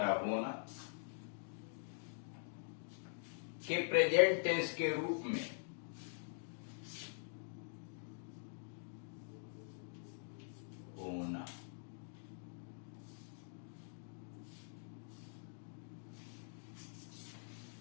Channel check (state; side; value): silent; right; digital silence